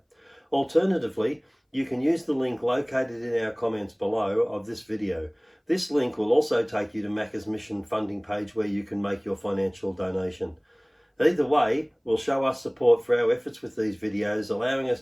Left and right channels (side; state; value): both; identical; correlation 1.00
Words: Alternatively, you can use the link located in our comments below of this video. This link will also take you to Macca's Mission funding page where you can make your financial donation. Either way will show us support for our efforts with these videos, allowing us